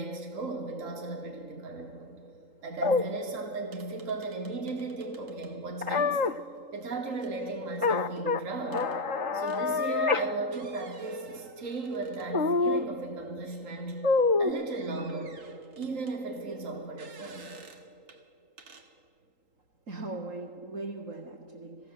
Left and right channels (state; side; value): late; left; 3.8 ms